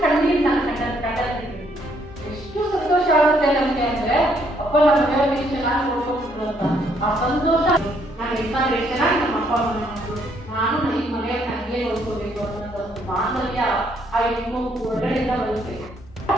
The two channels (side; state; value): both; normal; correlation 0.69